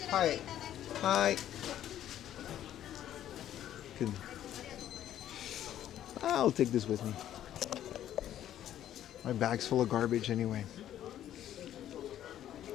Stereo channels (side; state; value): right; quieter; 11.6 dB